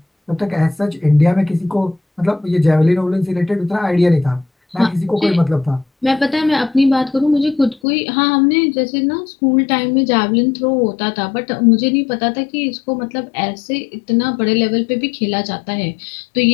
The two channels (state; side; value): drops out; right; at 7.8 s